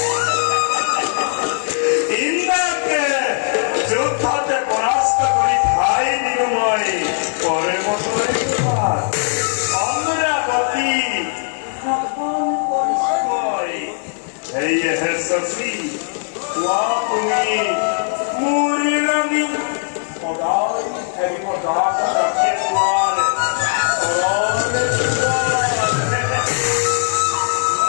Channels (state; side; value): silent; right; digital silence